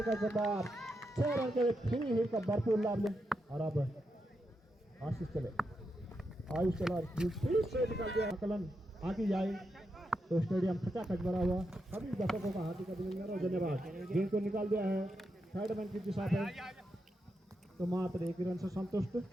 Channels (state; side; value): normal; both; correlation 0.85